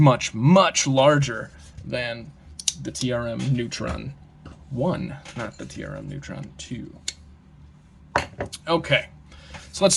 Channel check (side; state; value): both; identical; correlation 1.00